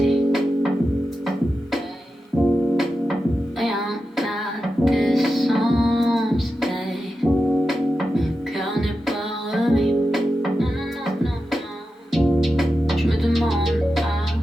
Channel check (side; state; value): both; normal; correlation 0.91